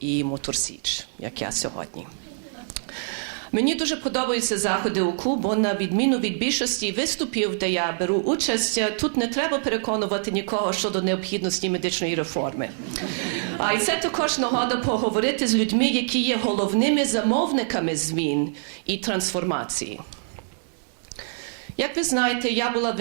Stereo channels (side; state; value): left; silent; digital silence